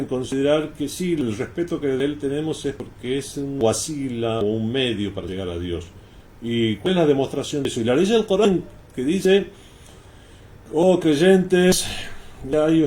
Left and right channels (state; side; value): identical; both; correlation 1.00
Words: considerar que sí, el respeto que de él tenemos es porque es un wasila o un medio para llegar a Dios. ¿Y cuál es la demostración de eso? Y la ley del Corán que dice: oh creyentes, ya